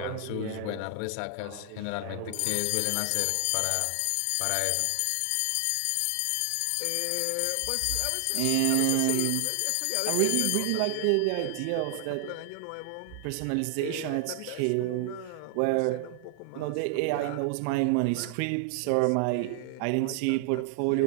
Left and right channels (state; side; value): different; both; correlation 0.00